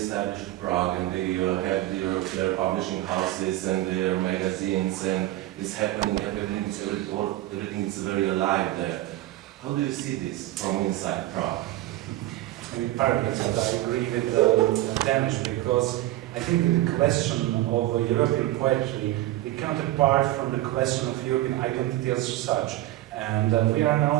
Prague, and they have their publishing houses and their magazines, and it's happening, everything is very alive there. How do you see this from inside Prague? In part, but I agree with Dénes, because I think that the question of European poetry becomes apart from the question of European identity as such. And we are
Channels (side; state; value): left; quieter; 15.9 dB